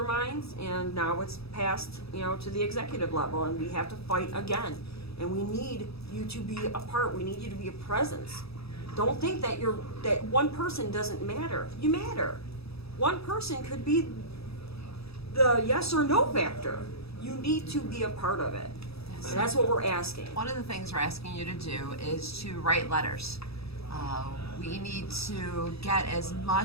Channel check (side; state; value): right; late; 0.78 ms